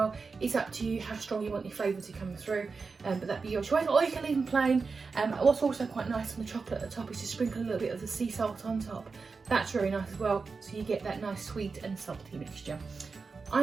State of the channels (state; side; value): quieter; left; 4.6 dB